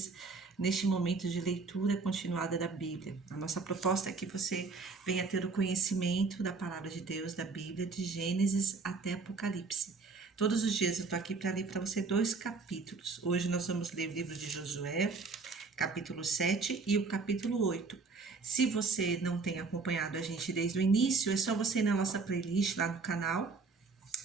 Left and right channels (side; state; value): left; quieter; 4.4 dB